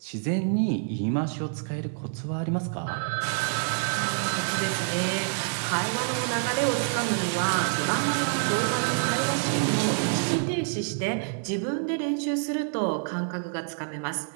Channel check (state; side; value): silent; left; 60 dB below the other